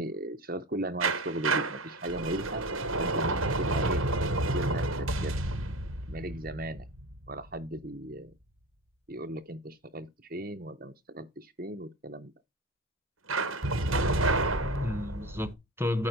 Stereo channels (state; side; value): normal; both; correlation 0.28